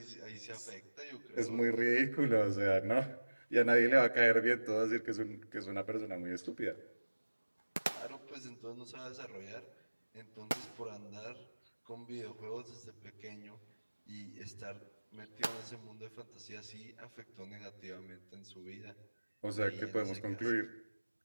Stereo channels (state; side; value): inverted; both; correlation -1.00